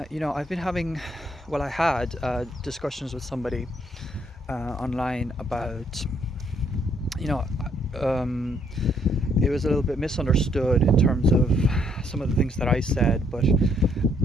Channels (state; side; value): normal; both; correlation 0.69